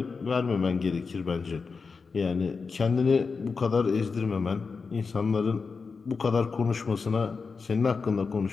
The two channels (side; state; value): right; quieter; 4.8 dB